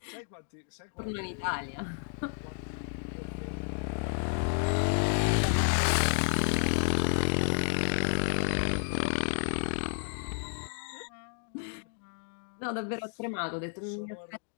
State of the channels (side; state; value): right; silent; 57 dB below the other